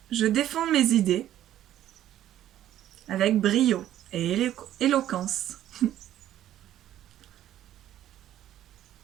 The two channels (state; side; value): quieter; left; 12.2 dB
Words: je défends mes idées avec brio et éloquence.